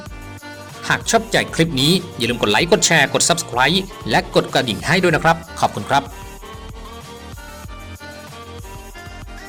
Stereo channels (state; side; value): identical; both; correlation 1.00